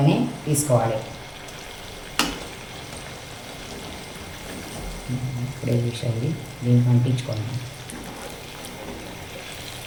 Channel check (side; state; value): both; identical; correlation 1.00